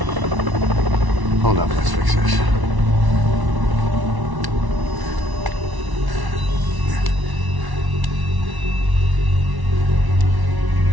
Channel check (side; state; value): left; late; 1.1 ms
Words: Hold up, let's fix this.